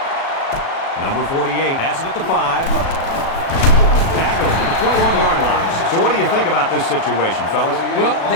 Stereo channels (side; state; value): right; late; 37 ms